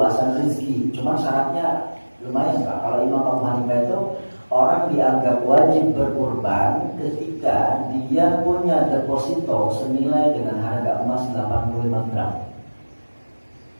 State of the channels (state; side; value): inverted; both; correlation -1.00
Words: rezeki. Cuma syaratnya lumayan, Pak. Kalau Imam Abu Hanifah itu orang dianggap wajib berkurban ketika dia punya deposito senilai dengan harga emas 85 gram.